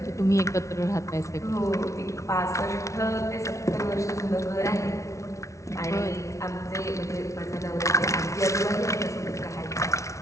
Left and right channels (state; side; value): late; right; 0.14 ms